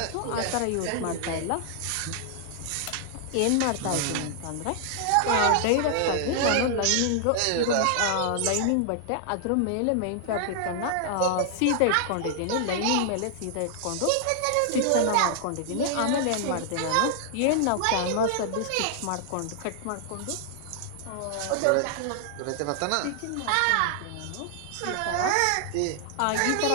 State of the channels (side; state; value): both; different; correlation 0.00